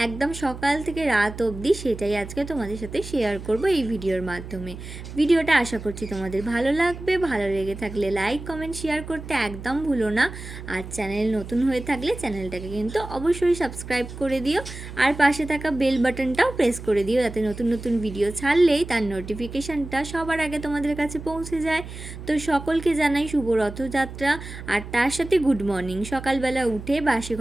একদম সকাল থেকে রাত অবধি, সেটাই আজকে তোমাদের সাথে শেয়ার করব এই ভিডিওর মাধ্যমে। ভিডিওটা আশা করছি তোমাদের ভালো লাগবে। ভালো লেগে থাকলে লাইক কমেন্ট শেয়ার করতে একদম ভুলো না। আর চ্যানেল নতুন হয়ে থাকলে চ্যানেলটাকে কিন্তু অবশ্যই সাবস্ক্রাইব করে দিও, আর পাশে থাকা বেল বাটনটাও প্রেস করে দিও, যাতে নতুন নতুন ভিডিও ছাড়লেই তার নোটিফিকেশানটা সবার আগে তোমাদের কাছে পৌঁছে যায়। তো সকলকে জানাই শুভ রথযাত্রা, আর তার সাথে গুড মর্নিং। সকালবেলা উঠে বাসি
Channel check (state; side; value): noise; right; hum, 11 dB below the sound